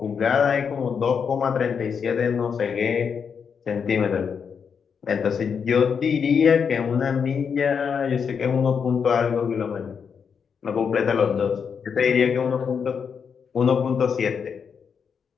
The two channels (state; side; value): quieter; right; 6.5 dB